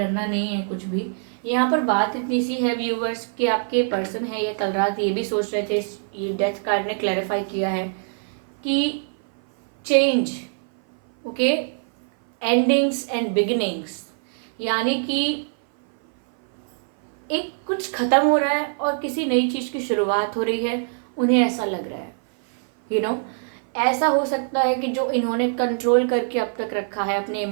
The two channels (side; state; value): left; silent; 58 dB below the other